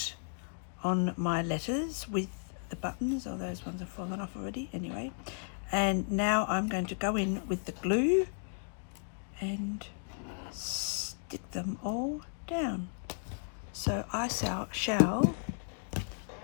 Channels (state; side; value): silent; right; digital silence